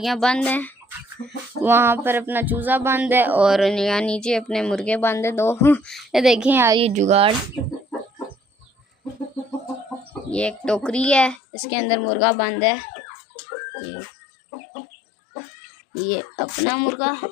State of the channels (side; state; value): right; drops out; at 11.4 s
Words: बंद हैं, वहाँ पर अपना चूज़ा बंद है और यहाँ नीचे अपने मुर्गे बंद है दो। ये देखें यार, ये जुगाड़, ये एक टोकरी है, इसके अंदर मुर्गा बंद है। ये अपना मुर्गा